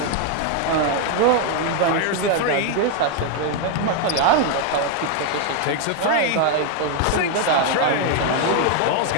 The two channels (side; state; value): both; different; correlation 0.01